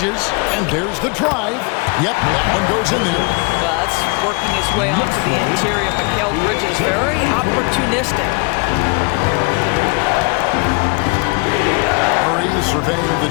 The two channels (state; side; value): quieter; right; 30.7 dB